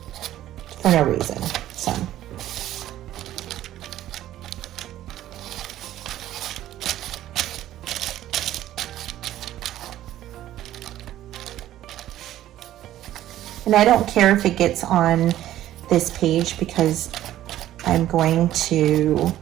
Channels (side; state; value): left; quieter; 13.2 dB